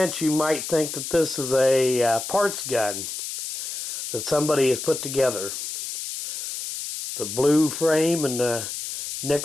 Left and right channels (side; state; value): left; noise; hiss, 6 dB below the sound